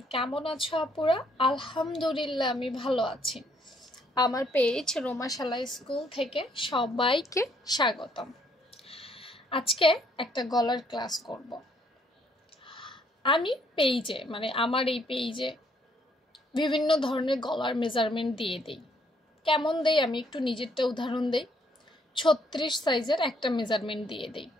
কেমন আছো আপুরা? আলহামদুলিল্লাহ আমি ভালো আছি। আমার পেজ রোমাশালা স্কুল থেকে সবাইকে স্বাগতম। আজকে একটা গলার ক্লাস করব। আমি পেজে আমার এই পেজে বিভিন্ন ধরনের গলার মেজারমেন্ট দিয়ে দিই। কেমন দেই আমি একটু নিজেরটা উদাহরণ দেই। 36 সাইজের একটা মেজারমেন্ট দিয়ে দিই।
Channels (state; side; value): normal; both; correlation 0.68